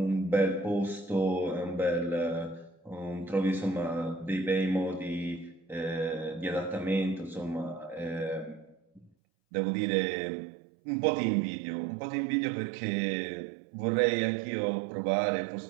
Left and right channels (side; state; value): left; drops out; at 9.1 s